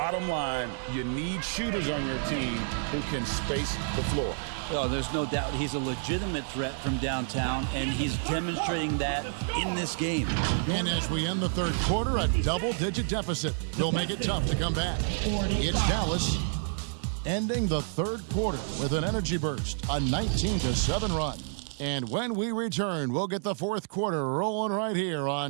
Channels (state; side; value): silent; left; digital silence